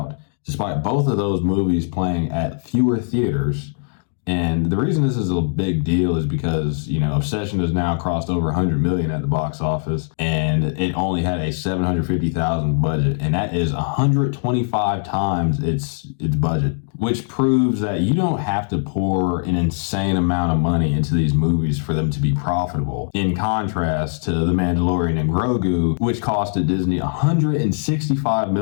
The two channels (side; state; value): right; silent; digital silence